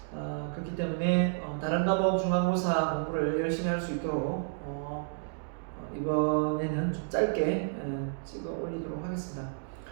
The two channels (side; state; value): left; silent; digital silence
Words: 그렇기 때문에 다른 과목 중간고사 공부를 열심히 할 수 있도록 이번에는 좀 짧게 찍어 올리도록 하겠습니다.